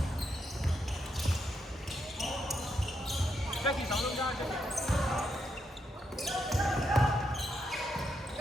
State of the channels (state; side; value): normal; both; correlation 0.80